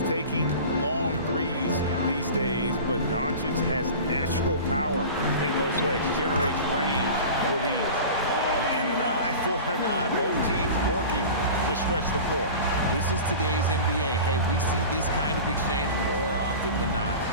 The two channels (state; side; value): inverted; both; correlation -0.35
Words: taking long threes these days, but Doncic has natural power in those legs, generates range with ease. And an eye for an eye. Both teams working to stretch the floor. This is today's NBA. Hey, we see this kind of exchange more often than not.